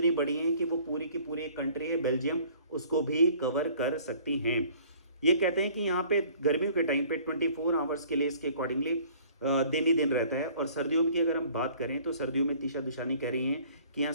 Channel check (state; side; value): inverted; both; correlation -0.54